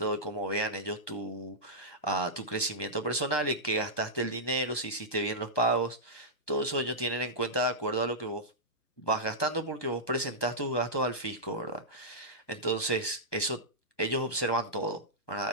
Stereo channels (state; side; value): late; right; 1.2 ms